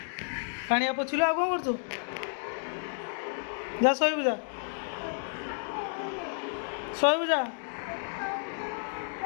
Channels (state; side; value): silent; right; digital silence